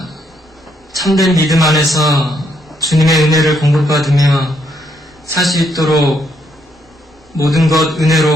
참된 믿음 안에서 주님의 은혜를 공급받으며 살 수 있도록 모든 것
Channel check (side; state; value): both; normal; correlation 0.74